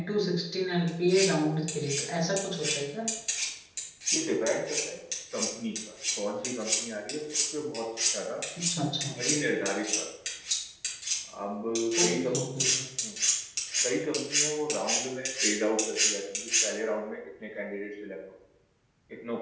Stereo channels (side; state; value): both; identical; correlation 1.00